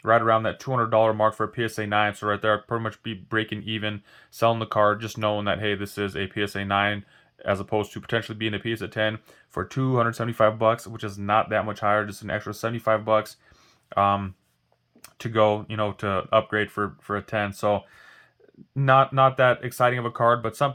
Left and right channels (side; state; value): both; identical; correlation 1.00